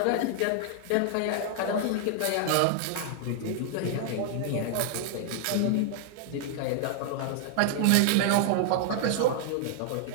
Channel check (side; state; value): both; different; correlation 0.00